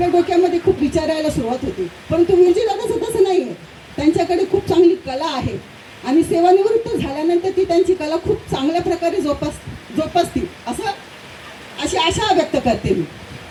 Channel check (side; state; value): both; identical; correlation 1.00